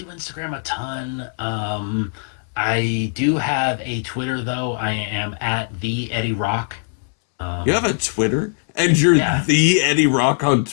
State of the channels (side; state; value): right; silent; 65 dB below the other